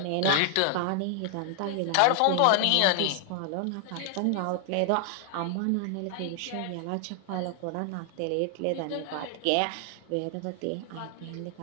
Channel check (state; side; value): different; both; correlation 0.00